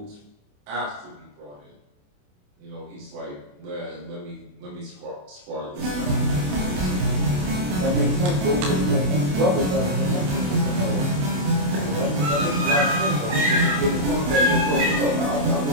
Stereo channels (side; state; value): left; late; 28 ms